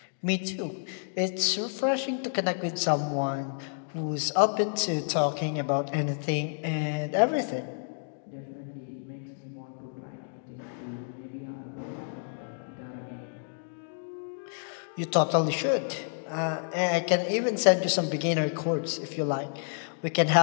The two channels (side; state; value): right; silent; digital silence